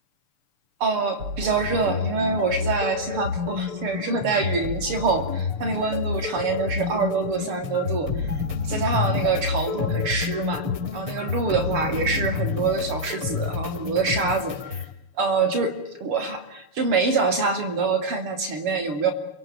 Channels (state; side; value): late; left; 6.8 ms